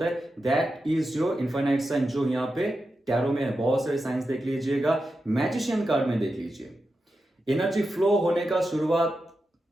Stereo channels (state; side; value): normal; both; correlation 0.89